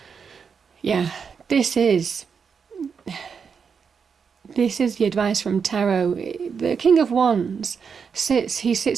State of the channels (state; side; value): quieter; left; 6.2 dB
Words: this is the advice from Tarot. The King of Wands sits